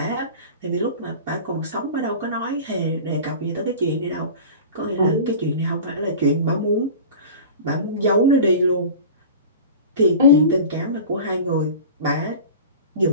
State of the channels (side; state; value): both; inverted; correlation -0.36